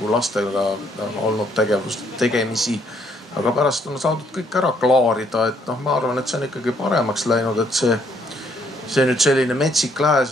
lastega olnud tegemisi. Aga pärast on saadud kõik ära klaarida, et ma arvan, et see on ikkagi paremaks läinud, et see nüüd selline metsik lääs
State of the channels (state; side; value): normal; both; correlation 0.69